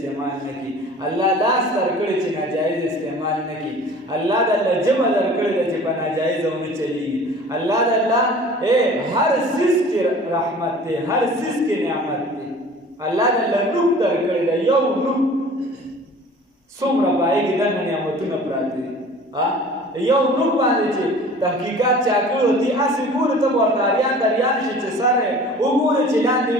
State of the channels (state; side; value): normal; both; correlation 0.45